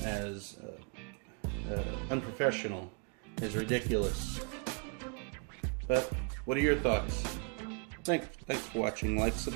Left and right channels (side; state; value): left; quieter; 36.4 dB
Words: as unprofessional, is ridiculous. But what are your thoughts? Thanks for watching. Like,